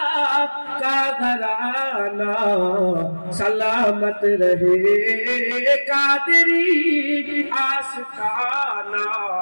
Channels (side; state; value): both; inverted; correlation -1.00